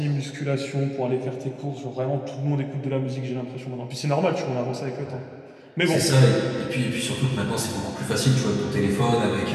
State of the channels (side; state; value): both; identical; correlation 1.00